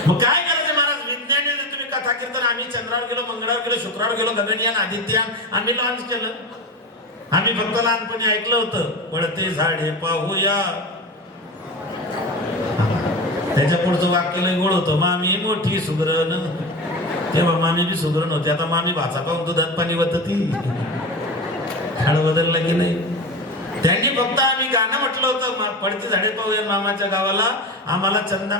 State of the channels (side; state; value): both; normal; correlation 0.26